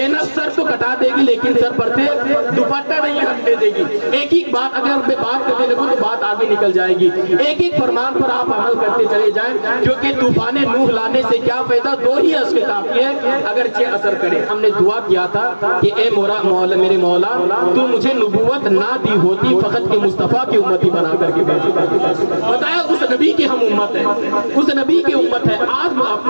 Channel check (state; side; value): inverted; both; correlation -1.00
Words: سر تو کٹا دے گی لیکن سر پر سے دوپٹہ نہیں ہٹنے دے گی۔ ایک ایک بات اگر میں بات کرنے لگوں تو بات آگے نکل جائے گی۔ ایک ایک فرمان پر آپ عمل کرتے چلے جائیں، کیونکہ طوفان نوح لانے سے کیا فائدہ؟ 2 ہی اشک کافی ہے اگرچہ اثر کرے۔ ہم نے دعا کیا تھا کہ اے میرے مولا تو مجھے نبوت نہ دی ہوتی فقط کہ مصطفیٰ کی امتی بنا کر کے بھیجی۔ بتایا اس نبی کی ہم امت ہے، اس نبی کی امت ہے۔ آج